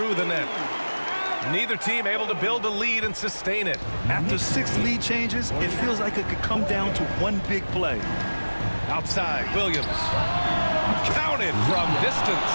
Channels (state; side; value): inverted; both; correlation -1.00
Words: the net. Neither team able to build a lead and sustain it. After 6 lead changes, it feels like it could come down to one big play. Outside, Williams. Counted from distance.